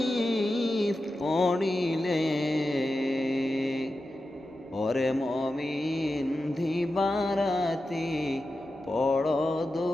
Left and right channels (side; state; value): both; normal; correlation 0.91